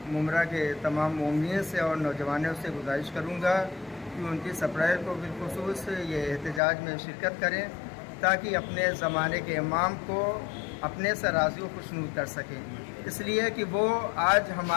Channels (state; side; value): drops out; right; at 6.6 s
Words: ممرہ کے تمام مومنین سے اور نوجوانوں سے گزارش کروں گا کہ 29 اپریل کو بالخصوص یہ احتجاج میں شرکت کریں تاکہ اپنے زمانے کے امام کو اپنے سے راضی و خوشنود کر سکیں، اس لیے کہ وہ آج